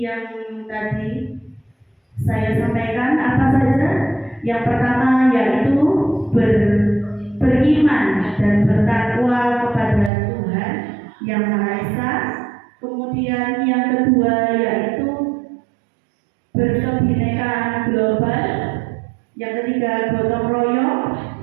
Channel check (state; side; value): drops out; left; at 10.1 s